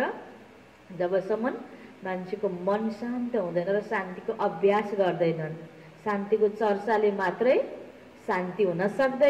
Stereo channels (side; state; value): both; identical; correlation 1.00